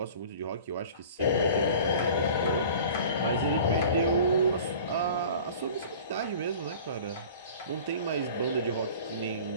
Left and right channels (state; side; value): inverted; both; correlation -0.43